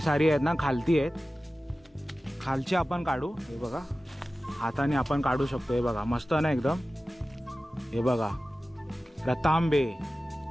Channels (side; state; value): both; normal; correlation 0.95